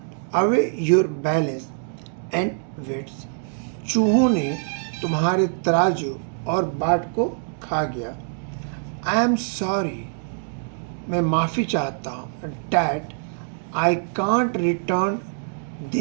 away your balance and weights, चूहों ने तुम्हारे तराजू और बाट को खा गया। आई एम सॉरी, मैं माफ़ी चाहता हूँ, that I can't return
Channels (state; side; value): silent; left; digital silence